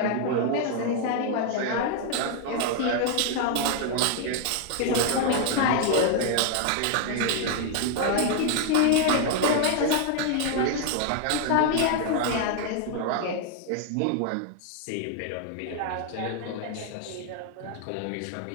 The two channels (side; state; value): both; different; correlation 0.00